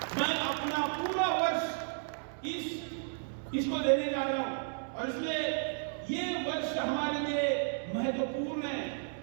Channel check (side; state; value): left; silent; digital silence